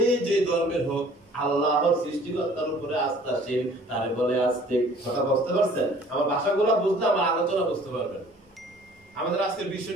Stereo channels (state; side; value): normal; both; correlation 0.52